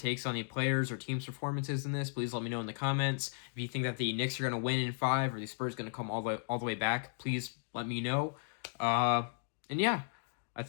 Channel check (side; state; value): right; silent; digital silence